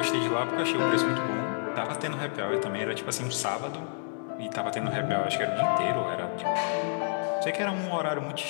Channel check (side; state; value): right; silent; digital silence